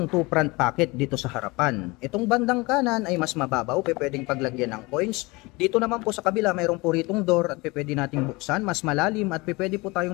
2 front pocket dito sa harapan. Itong bandang kanan ay mas mababaw, pwedeng paglagyan ng coins. Dito naman po sa kabila mayroon po ritong door at pwede nating buksan, mas malalim at pwede po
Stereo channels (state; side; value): quieter; right; 24.2 dB